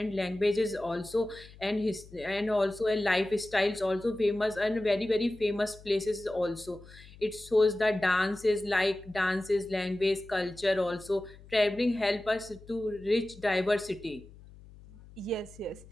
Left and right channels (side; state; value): left; noise; hum, 21 dB below the sound